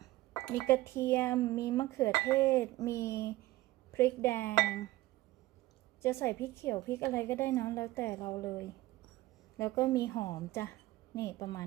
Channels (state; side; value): quieter; left; 17.5 dB